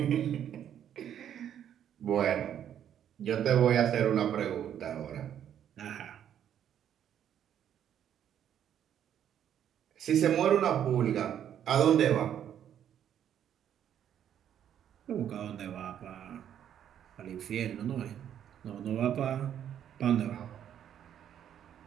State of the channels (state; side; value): quieter; left; 9.8 dB